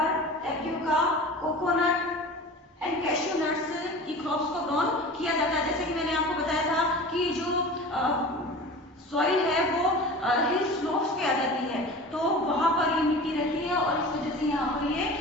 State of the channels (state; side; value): normal; both; correlation 0.36